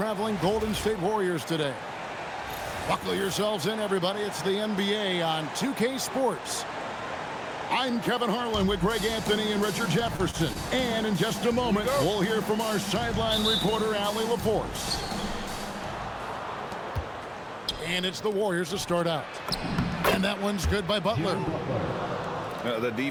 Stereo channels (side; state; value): both; identical; correlation 1.00